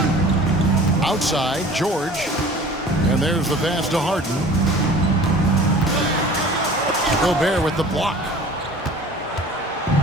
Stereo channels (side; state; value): both; normal; correlation 0.44